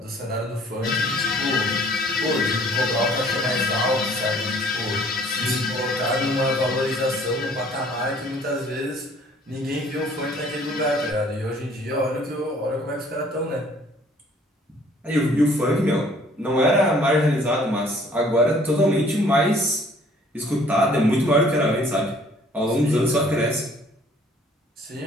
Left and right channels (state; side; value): normal; both; correlation 0.57